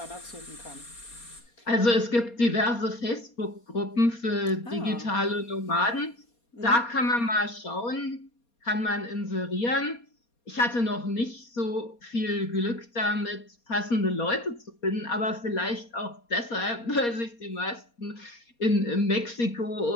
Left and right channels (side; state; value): right; late; 4.2 ms